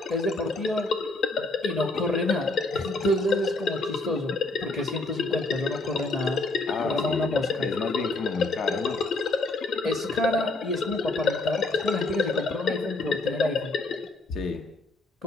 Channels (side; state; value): right; quieter; 3.1 dB